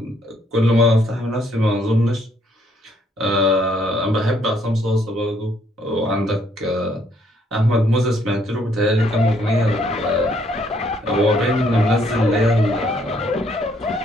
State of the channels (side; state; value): both; normal; correlation 0.68